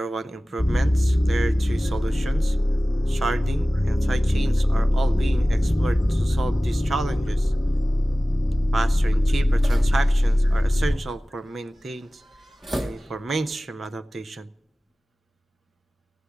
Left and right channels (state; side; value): normal; both; correlation 0.97